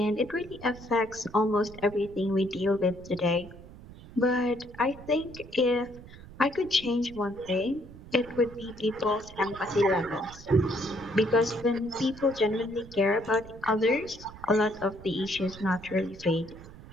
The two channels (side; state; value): right; noise; rumble, 17 dB below the sound